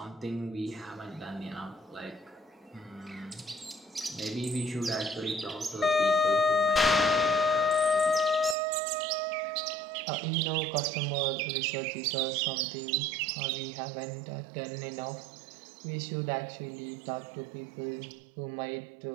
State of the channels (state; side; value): drops out; left; at 8.6 s